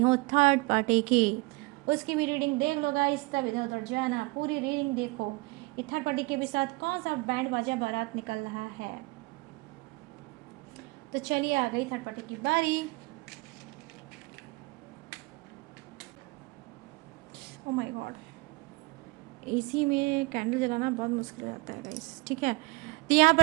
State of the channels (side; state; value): left; quieter; 25.5 dB